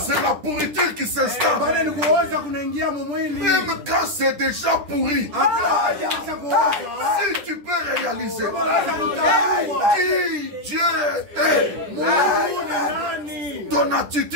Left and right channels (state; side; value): late; left; 10 ms